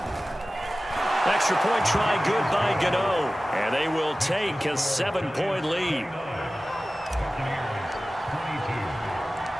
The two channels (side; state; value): both; normal; correlation 0.96